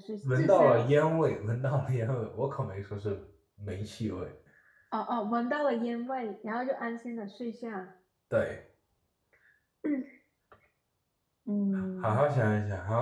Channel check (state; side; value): identical; both; correlation 1.00